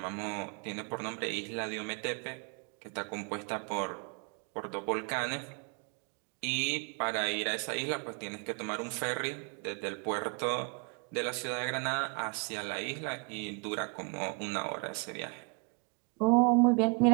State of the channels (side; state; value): left; quieter; 34.5 dB